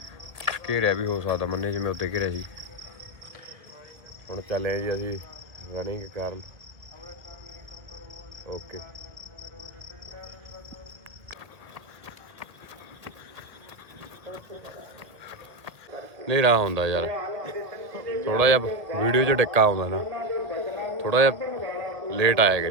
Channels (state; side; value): late; left; 1.8 ms